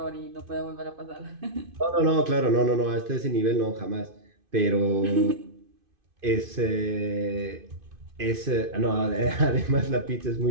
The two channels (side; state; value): left; late; 2.5 ms